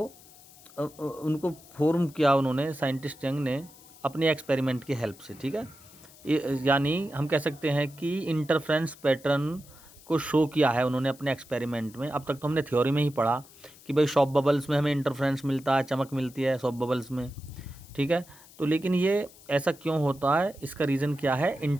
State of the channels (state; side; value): noise; left; hiss, 23 dB below the sound